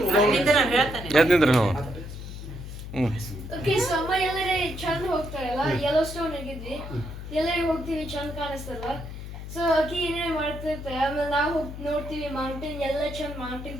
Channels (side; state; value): left; noise; hum, 10 dB below the sound